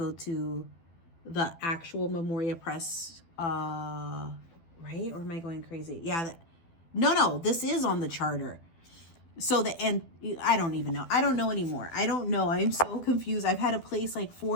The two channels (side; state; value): right; late; 12 ms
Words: to the actual Memoria Press, right? Or am I going crazy? Yeah, no, this is on the charter. So I don't even know. I don't know anymore. I don't know. I'm so confused. I've had to place like